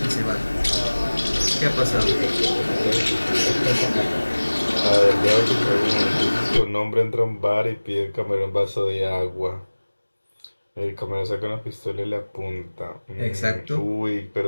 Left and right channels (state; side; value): inverted; both; correlation -1.00